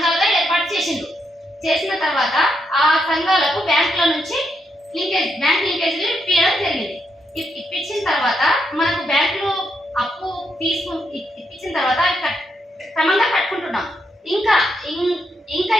ఏర్పాటు చేసిన తర్వాత ఆ సంఘాలకు బ్యాంకుల నుంచి బ్యాంక్ లింకేజీలు ఇప్పించడం జరిగింది. ఇప్పించిన తర్వాత మనకు బ్యాంకులు అప్పు ఇప్పించిన తర్వాత క్రమంగా కట్టుకుంటున్నాం. ఇంకా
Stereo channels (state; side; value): normal; both; correlation 0.79